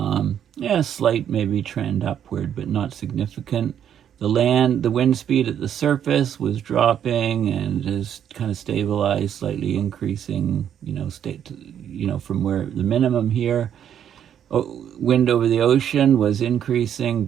Slight maybe trend upward, but not significant. The wind speed at the surface was dropping and has kind of stabilized, slightly increasing, from where the minimum here. Wind over the ocean was increasing,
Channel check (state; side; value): quieter; left; 9.4 dB